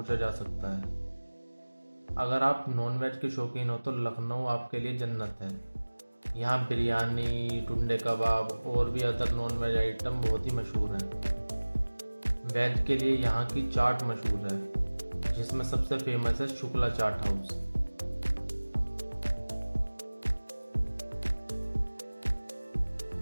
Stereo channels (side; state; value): both; inverted; correlation -1.00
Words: जा सकता है। अगर आप नॉनवेज के शौकीन हो तो लखनऊ आपके लिए जन्नत है। यहाँ बिरयानी, टुंडे कबाब और भी अदर नॉनवेज आइटम बहुत ही मशहूर हैं। वेज के लिए यहाँ की चाट मशहूर है, जिसमें सबसे फेमस है शुक्ला चाट हाउस।